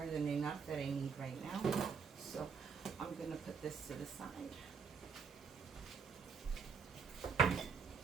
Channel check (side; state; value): left; quieter; 5.8 dB